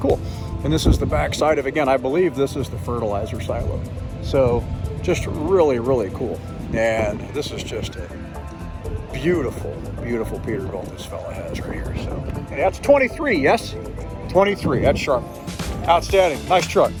And this is the back side of, again, I believe this is the fertilizer silo. So just really, really cool. And this is just a beautiful, beautiful Peterbilt this fella has right here. So and that's 23, yes? 23, that's sharp. Outstanding, nice truck.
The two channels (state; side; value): identical; both; correlation 1.00